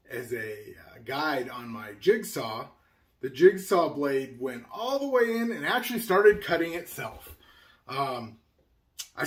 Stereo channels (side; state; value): both; identical; correlation 1.00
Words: guide on my jigsaw, the jigsaw blade went all the way in and actually started cutting itself. I